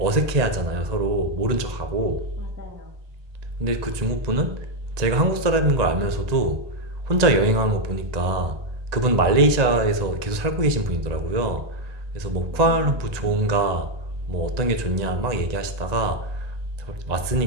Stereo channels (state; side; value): late; left; 1.8 ms